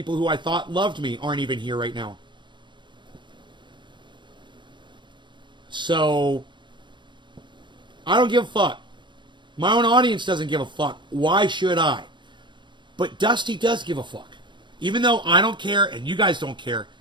who I thought loved me aren't even here right now. So, I don't give a fuck. My own audience doesn't give a fuck. Why should I? But Dusty does give a fuck. Even though I don't care and you guys don't care,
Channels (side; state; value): left; late; 0.23 ms